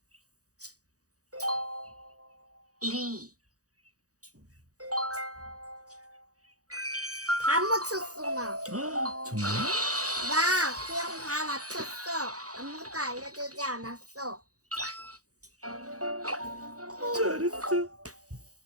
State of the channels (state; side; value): late; left; 0.66 ms